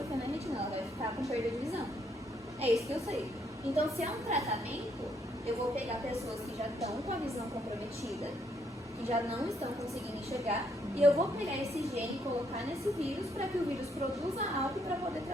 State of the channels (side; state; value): both; normal; correlation 0.72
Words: na retina, ela vai ficar com perda de visão. É isso que eu sei. Então, se é um tratamento, eu vou pegar pessoas que já estão com a visão comprometida, que já não estão conseguindo enxergar, e eu vou pegar esse gene e colocar nesse vírus para que o vírus produza algo para poder